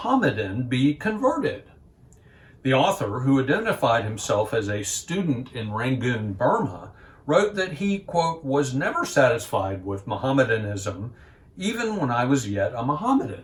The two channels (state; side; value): identical; both; correlation 1.00